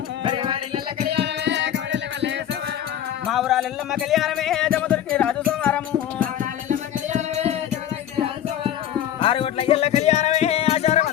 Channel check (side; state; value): right; quieter; 10.7 dB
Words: మా ఊరాల ఎల్లమ్మ కళ్యాణమే జమదుర్కి రాజు సోమారము ఆరుగొట్ల ఎల్ల కళ్యాణమే